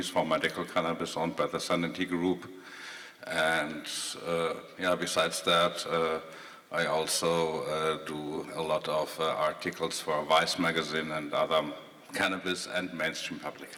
for medical cannabis owned by the Sanity Group. And besides that, I also do a lot of articles for Vice magazine and other cannabis and mainstream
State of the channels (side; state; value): both; identical; correlation 1.00